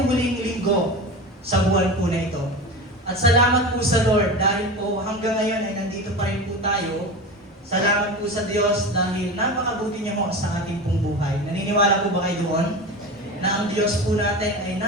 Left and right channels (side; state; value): both; normal; correlation 0.28